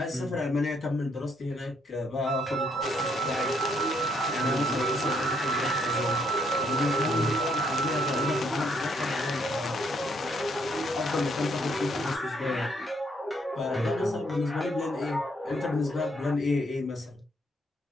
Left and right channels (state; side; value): normal; both; correlation 0.71